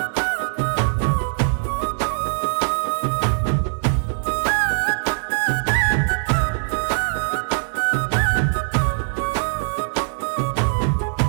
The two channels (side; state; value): left; silent; digital silence